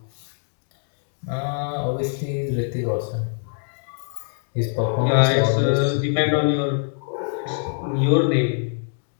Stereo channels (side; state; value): right; silent; digital silence